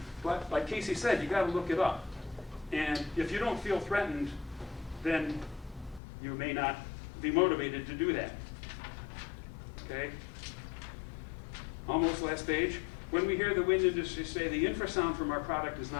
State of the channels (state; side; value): drops out; right; at 6.0 s